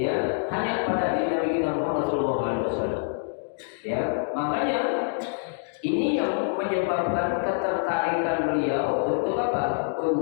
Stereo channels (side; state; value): right; silent; digital silence